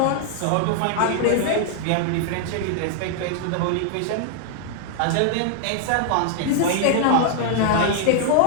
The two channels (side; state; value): both; different; correlation 0.00